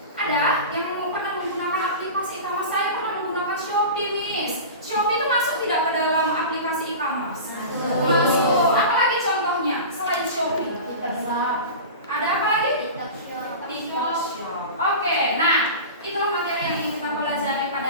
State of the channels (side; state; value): both; inverted; correlation -0.31